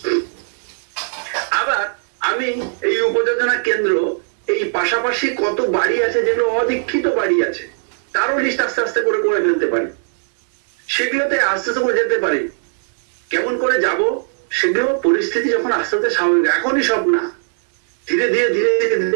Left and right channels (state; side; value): silent; left; digital silence